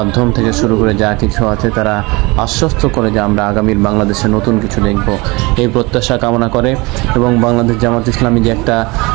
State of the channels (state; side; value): quieter; left; 24.6 dB